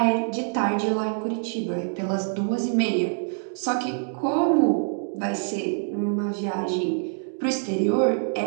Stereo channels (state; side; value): silent; left; 62 dB below the other